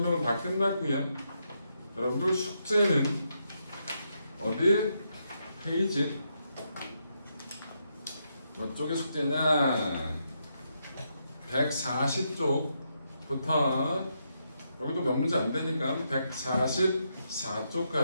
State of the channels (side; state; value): both; inverted; correlation -0.81